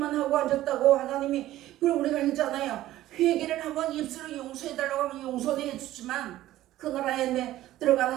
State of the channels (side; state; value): left; quieter; 14.7 dB